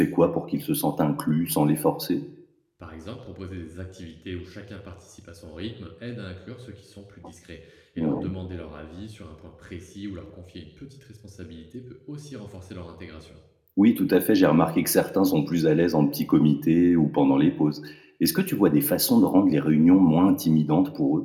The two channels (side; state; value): both; identical; correlation 1.00